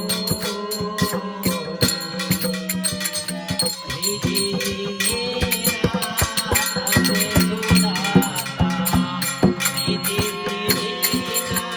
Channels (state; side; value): identical; both; correlation 1.00